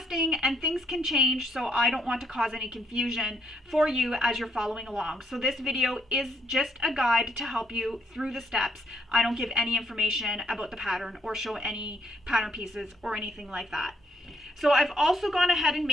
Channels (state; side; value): normal; both; correlation 0.71